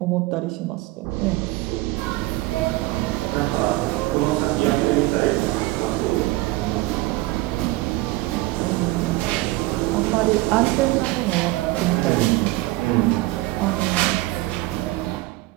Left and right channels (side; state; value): left; quieter; 19.4 dB